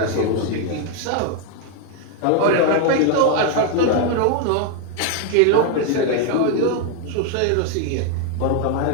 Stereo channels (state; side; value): different; both; correlation 0.01